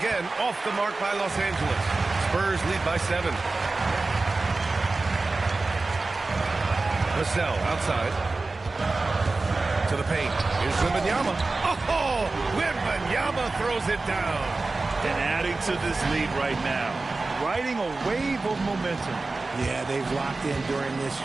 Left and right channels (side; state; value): left; quieter; 3.5 dB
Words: off the mark by Los Angeles. Spurs lead by 7. Vassell outside. To the paint. Here's Wembanyama. Oh! Wembanyama throws it down. And adding to this lead right now. Riding a wave of momentum. Yeah, they've locked in during this